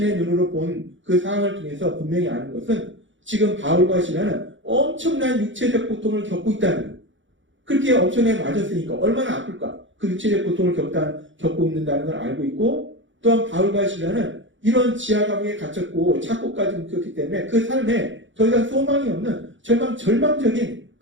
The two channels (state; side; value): late; left; 0.55 ms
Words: 눈으로 본 그 상황을 통해서 분명히 아는 것은 지금 바울과 신라는 엄청난 육체적 고통을 겪고 있다는 거예요. 그렇게 엄청나게 맞았으니까 얼마나 아플까? 그 육체적 고통을 겪고 있는다는 걸 알고 있고 또한 바울과 신라는 이런 지하 감옥에 갇혔고 착고까지 묶였기 때문에 그 삶에 더 이상 소망이 없는 절망적인